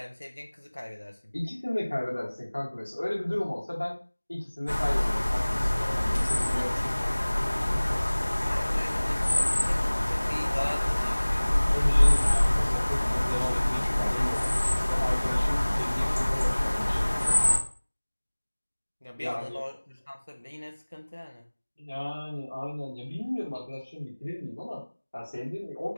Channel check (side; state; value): both; inverted; correlation -1.00